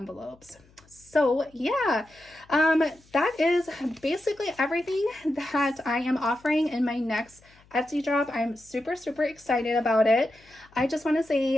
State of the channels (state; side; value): noise; left; hum, 29 dB below the sound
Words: So yeah, that is basically everything that I am offering in my next Etsy drop. I'm super excited about it. I just want to